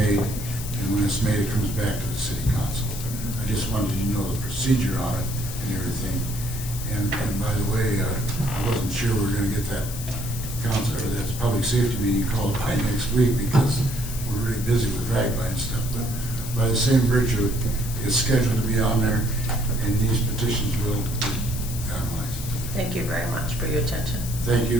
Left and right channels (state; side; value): noise; left; hiss, 10 dB below the sound